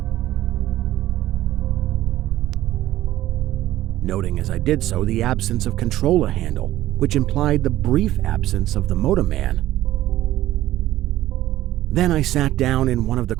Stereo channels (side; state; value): left; quieter; 14.5 dB